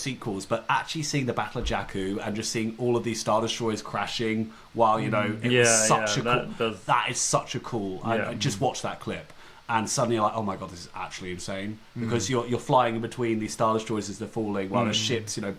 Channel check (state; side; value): identical; both; correlation 1.00